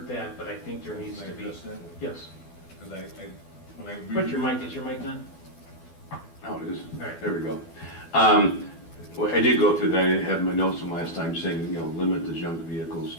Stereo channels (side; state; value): right; late; 12 ms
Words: that, but I think there needs to be. Can I address that? Yes. Because when I Put your mic. Is your mic on? Oh, it is. All right. There we go. Well, I did go through that. I didn't have my notes from last time saying, limit the junk vehicles